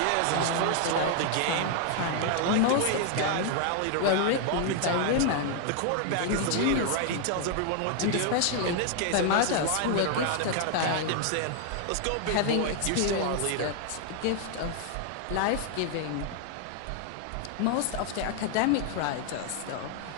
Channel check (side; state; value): both; different; correlation 0.00